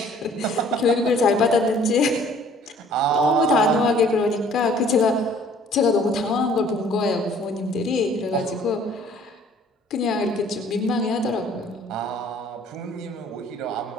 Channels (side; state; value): both; normal; correlation 0.55